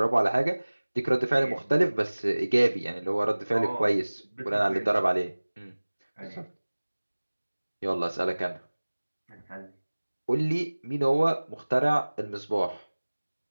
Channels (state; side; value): inverted; both; correlation -1.00